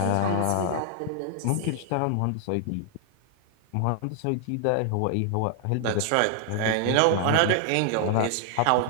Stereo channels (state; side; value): different; both; correlation 0.00